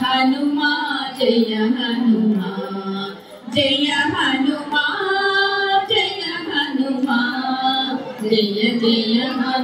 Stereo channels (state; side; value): identical; both; correlation 1.00